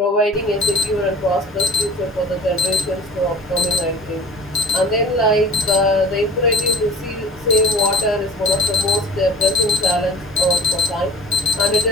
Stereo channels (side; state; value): both; normal; correlation 0.42